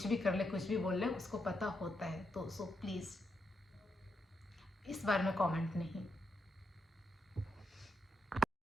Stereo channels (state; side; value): normal; both; correlation 0.82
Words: भी कर ले, कुछ भी बोल ले, उसको पता होता है। तो सो प्लीज़ इस बारे में कमेंट नहीं।